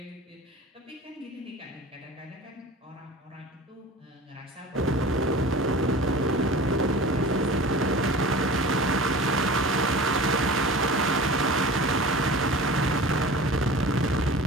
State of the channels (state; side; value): normal; both; correlation 0.38